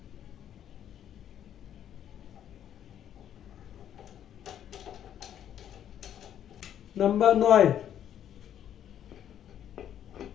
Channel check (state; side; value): quieter; right; 10.2 dB